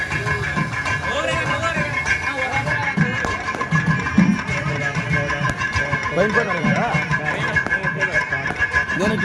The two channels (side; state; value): both; identical; correlation 1.00